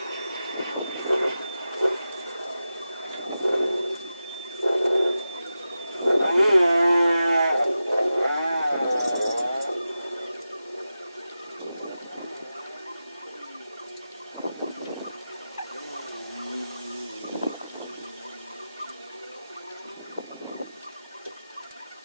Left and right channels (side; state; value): both; inverted; correlation -0.92